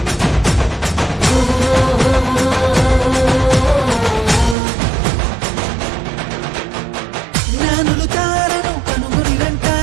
జ్ఞానులు తారను కనుగొనిరంట,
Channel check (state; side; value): drops out; left; at 4.5 s